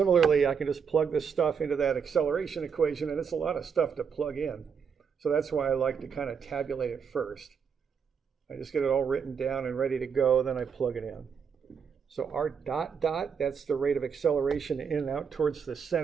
I can just plug this stuff into that acceleration equation, and it's a lot of stuff to plug in. So that's why I like to kind of tabulate it first. I just get it all written down and ready to go, then I plug it in. So r dot dot, that's the rate of acceleration in and out towards the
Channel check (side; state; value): left; quieter; 6.7 dB